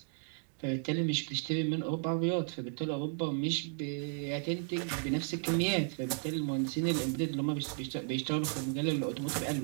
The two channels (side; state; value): left; silent; 55 dB below the other